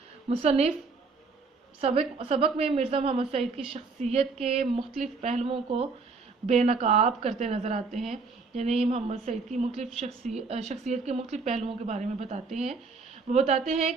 مصنف سبق میں مرزا محمد سعید کی شخصیت کے مختلف پہلوؤں کو بے نقاب کرتے نظر آتے ہیں، یعنی محمد سعید کی مختلف شخصیت کے مختلف پہلوؤں کے بارے میں بتاتے ہیں۔ وہ بتاتے ہیں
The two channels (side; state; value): left; quieter; 4.3 dB